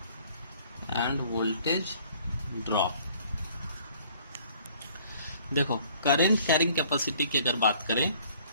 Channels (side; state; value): both; inverted; correlation -0.57